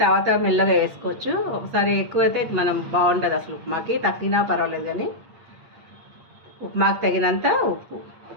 తర్వాత మెల్లగా వేసుకోవచ్చు. ఒకసారి ఎక్కువైతే మనం బాగుంటుంది అసలు ఉప్మాకి. తగ్గినా పర్వాలేదు కానీ ఉప్మాకి తగినంత ఉప్పు.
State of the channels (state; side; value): late; left; 8.6 ms